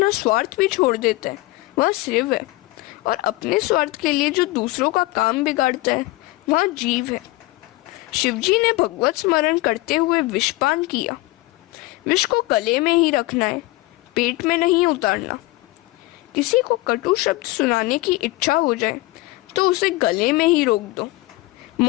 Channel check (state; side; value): quieter; right; 20.1 dB